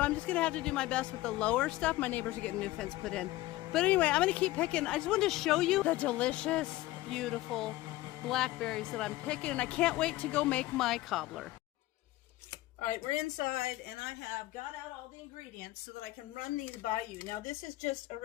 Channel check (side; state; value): right; quieter; 17.5 dB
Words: I'm just going to have to do my best with the lower stuff. My neighbors are getting new fence put in. But anyway, I'm going to keep picking. I just wanted to show you the delicious, beautiful blackberries that I'm picking. And I can't wait to go make my cobbler. All right, we're inside and I have got out all the ingredients so that I can run these by you. Now this is just a